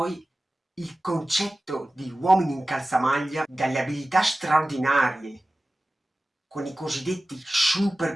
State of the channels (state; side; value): normal; both; correlation 0.96